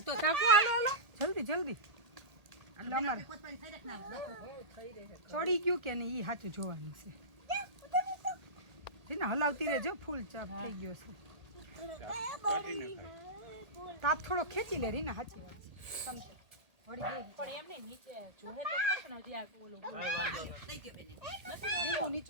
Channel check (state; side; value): late; left; 1.8 ms